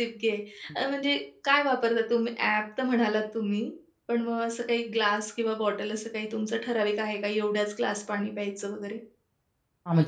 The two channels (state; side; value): identical; both; correlation 1.00